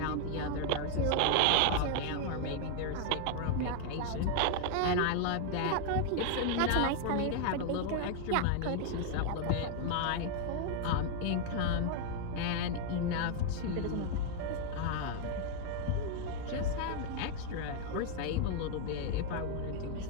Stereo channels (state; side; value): different; both; correlation 0.00